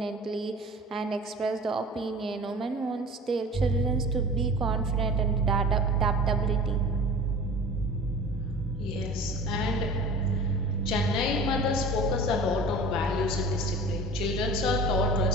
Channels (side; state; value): both; normal; correlation 0.39